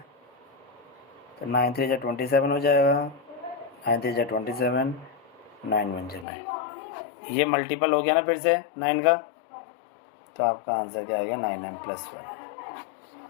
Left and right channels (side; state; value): right; drops out; at 6.2 s